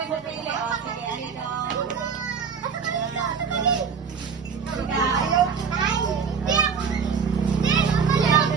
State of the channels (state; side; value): quieter; left; 6.2 dB